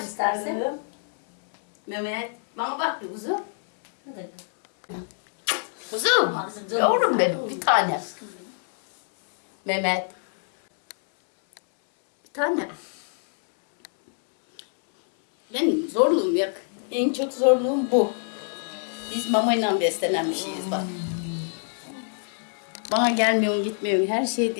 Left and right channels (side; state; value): right; silent; 62 dB below the other